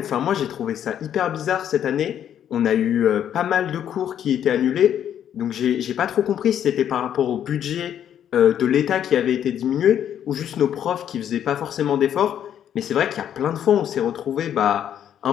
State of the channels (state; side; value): quieter; right; 9.8 dB